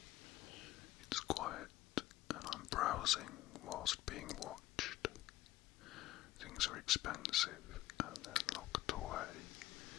It's quiet and I'm browsing whilst being watched. Things are expensive and they're locked away.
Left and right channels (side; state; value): right; quieter; 15.7 dB